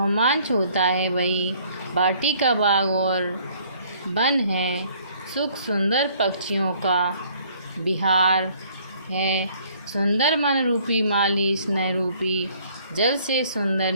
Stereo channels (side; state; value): both; inverted; correlation -0.60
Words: होता है वही बाटी का बाग और वन है, सुख सुंदर पक्षियों का विहार है। सुंदर मन रूपी माली स्नेह रूपी जल से सुंदर